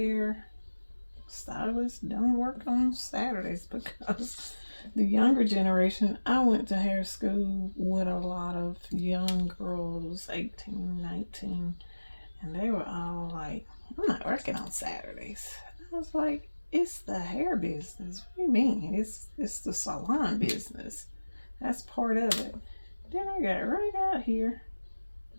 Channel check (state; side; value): inverted; both; correlation -1.00